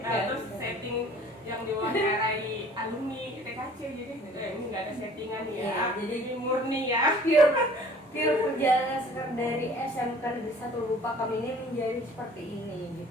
terus setting yang diwawancarai alumni TKC, jadi ini nggak ada settingan ya. Iya, jadi ini murni ya. Pure perjalanan Sekar dari SMK Negeri 1 Lupa kami ini menjadi seperti ini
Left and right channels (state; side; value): normal; both; correlation 0.51